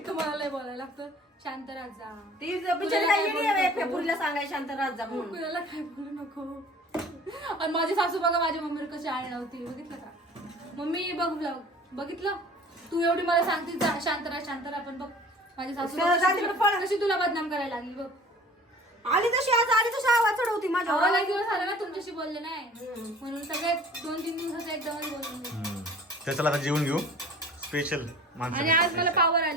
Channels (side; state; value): both; normal; correlation 0.46